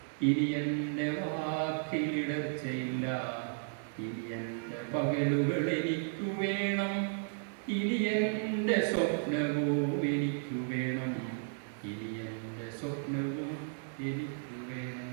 ഇനി എൻ്റെ വാക്കിലിടർച്ചയില്ല. ഇനി എൻ്റെ പകലുകൾ എനിക്കു വേണം, ഇനി എൻ്റെ സ്വപ്നവും എനിക്കു വേണം. ഇനി എൻ്റെ സ്വപ്നവും എനിക്കു വേണം.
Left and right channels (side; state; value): left; silent; 55 dB below the other